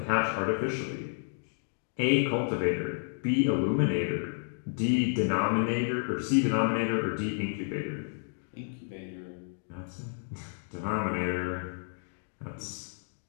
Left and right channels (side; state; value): right; silent; digital silence